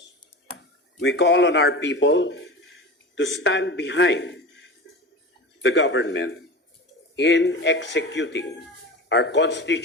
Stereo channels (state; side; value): normal; both; correlation 0.30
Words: We call on our people to stand behind the government in executing our